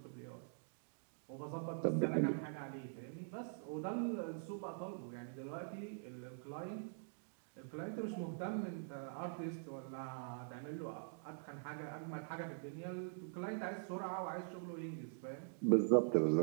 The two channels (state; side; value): silent; left; digital silence